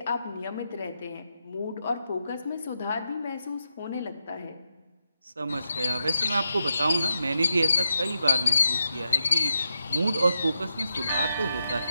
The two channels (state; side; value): inverted; both; correlation -0.84